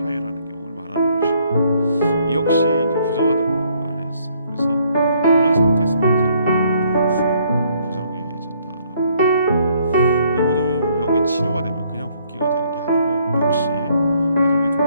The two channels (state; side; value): inverted; both; correlation -0.67